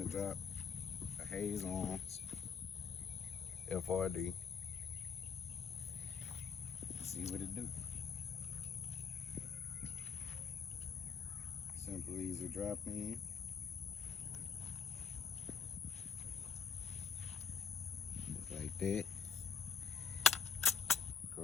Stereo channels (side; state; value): right; quieter; 6.5 dB